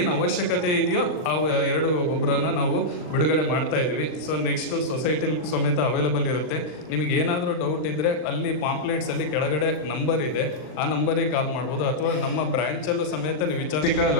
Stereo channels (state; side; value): late; right; 39 ms